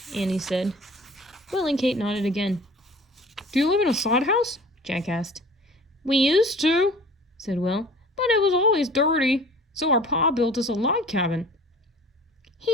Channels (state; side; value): normal; both; correlation 0.45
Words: Annie said. Will and Kate nodded again. "Do you live in a sod house?" Jack asked. "We used to," said Will. "but it was always dirty, so our pa built us a log cabin."